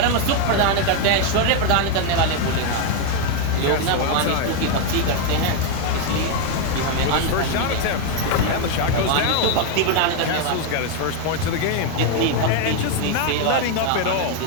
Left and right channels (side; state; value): both; different; correlation 0.01